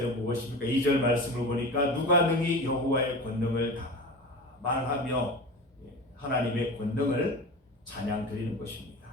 무엇입니까? 2절 말씀을 보니까 누가 능히 여호와의 권능을 다 말하며 하나님의 권능을 찬양 드리는 것입니다.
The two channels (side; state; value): both; normal; correlation 0.31